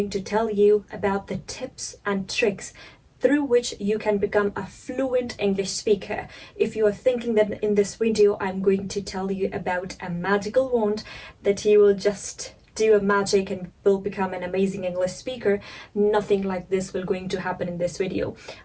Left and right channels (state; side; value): identical; both; correlation 1.00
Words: to tell you about the tips and tricks through which you can become a fluent English speaker. If you are thinking that in this video, I'm going to tell you about a magical wand that you will just do a magic and will become an amazing English speaker, nothing like this will going to happen in this video.